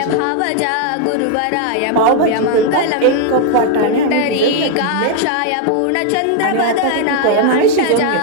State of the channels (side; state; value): both; different; correlation 0.00